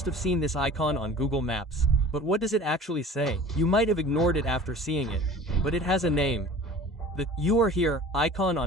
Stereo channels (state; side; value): normal; both; correlation 0.43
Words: have seen this icon on Google Maps. But what does it actually say? You might have ignored it after seeing it. But it has a name. The "You are here" icon